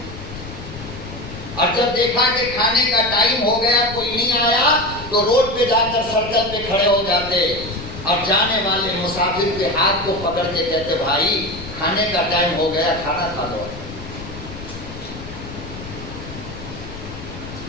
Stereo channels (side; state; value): left; noise; rumble, 12 dB below the sound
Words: اور جب دیکھا کہ کھانے کا ٹائم ہو گیا کوئی نہیں آیا تو روڈ پہ جا کر سڑک پہ کھڑے ہو جاتے اور جانے والے مسافر کے ہاتھ کو پکڑ کے کہتے بھائی کھانے کا ٹائم ہو گیا کھانا کھا لو۔